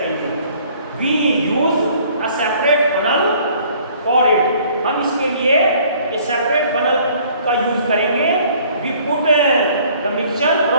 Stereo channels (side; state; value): both; inverted; correlation -0.57